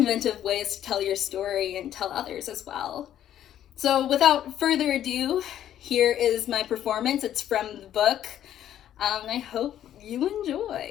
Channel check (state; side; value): quieter; right; 11.1 dB